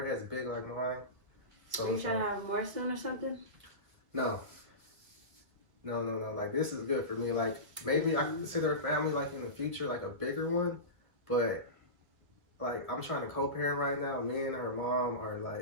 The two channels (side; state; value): left; late; 1.6 ms